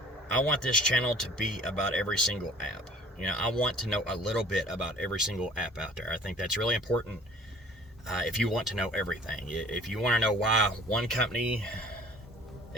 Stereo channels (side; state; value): both; normal; correlation 0.50